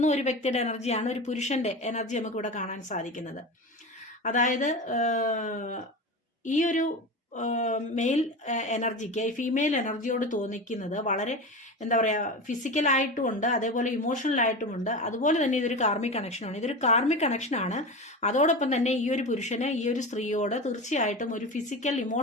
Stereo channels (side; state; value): both; normal; correlation 0.26